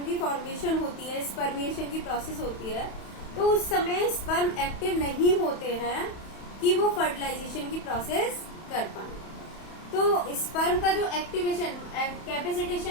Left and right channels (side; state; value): right; late; 31 ms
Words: की फॉर्मेशन होती है, स्पर्मिएशन की प्रोसेस होती है, तो उस समय स्पर्म एक्टिव नहीं होते हैं कि वो फर्टिलाइजेशन की प्रोसेस कर पाए। तो स्पर्म का जो एक्टिवेशन,